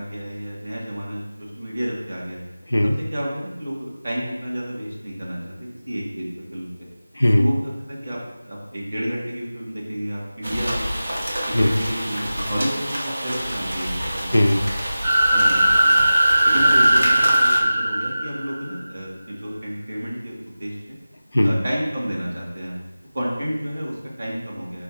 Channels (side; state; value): both; inverted; correlation -0.96